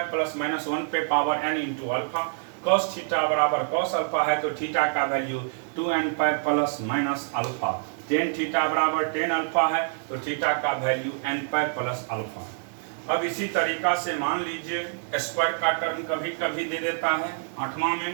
plus minus 1 पे power n into alpha. Cos theta बराबर कॉस अल्फा है, तो थीटा का value 2n pi plus minus alpha. Tan theta बराबर टेन अल्फा है, तो थीटा का value n pi plus alpha. अब इसी तरीका से मान लीजिए स्क्वायर का टर्म कभी कभी दे देता है। आठवां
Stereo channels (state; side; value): silent; left; 57 dB below the other